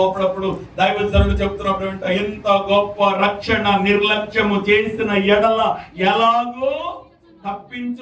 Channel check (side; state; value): both; identical; correlation 1.00